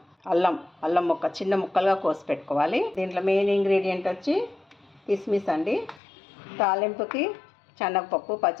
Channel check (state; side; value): drops out; right; at 6.0 s